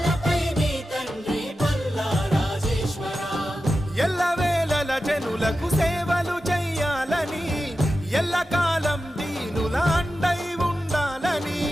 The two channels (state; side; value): normal; both; correlation 0.92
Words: ఎల్లవేళల జనులకు సేవలు చెయ్యాలని ఎల్లకాలం దీనుల అండై ఉండాలని